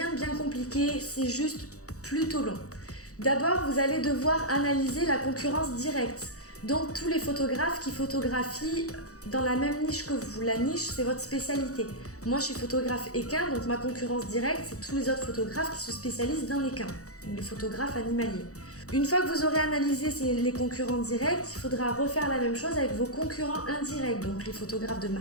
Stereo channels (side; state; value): right; late; 0.65 ms